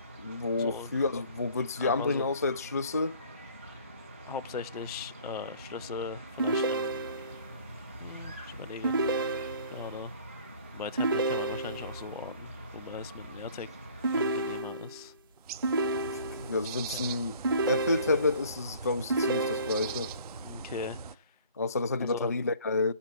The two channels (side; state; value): both; inverted; correlation -0.52